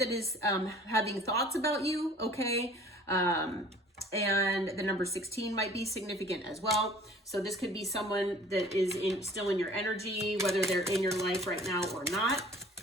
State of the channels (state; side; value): normal; both; correlation 0.49